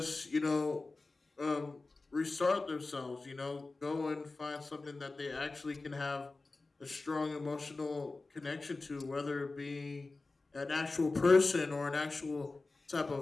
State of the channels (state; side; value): quieter; right; 3.5 dB